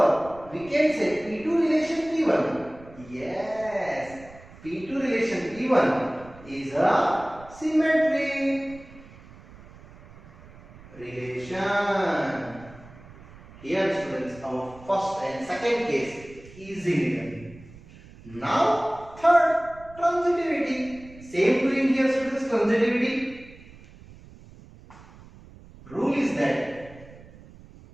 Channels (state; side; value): noise; right; rumble, 21 dB below the sound